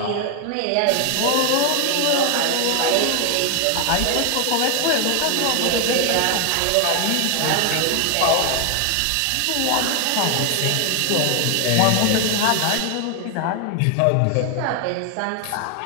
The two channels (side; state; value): both; different; correlation 0.00